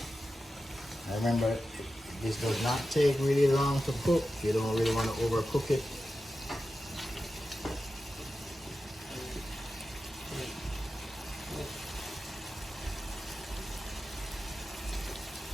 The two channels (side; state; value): both; normal; correlation 0.92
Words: Remember, this does not take really long to cook. You don't really want to overcook it.